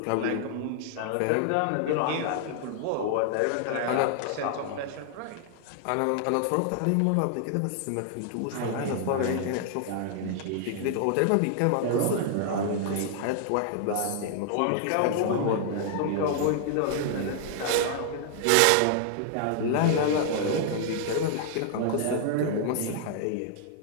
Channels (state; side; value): different; both; correlation 0.00